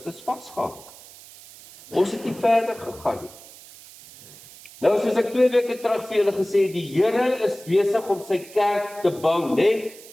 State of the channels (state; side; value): noise; right; hiss, 20 dB below the sound